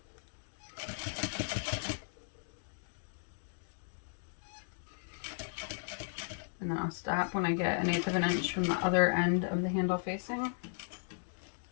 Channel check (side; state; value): right; silent; digital silence